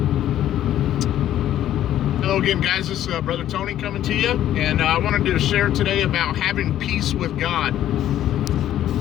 again, guys. This is Brother Tony coming to you, and I wanted to share today about having peace with God.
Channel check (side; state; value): right; quieter; 12.0 dB